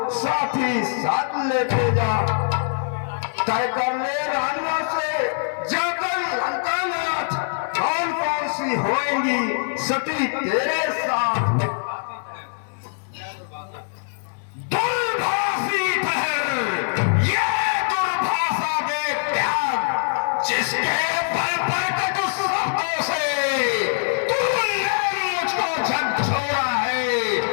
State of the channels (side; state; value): right; silent; digital silence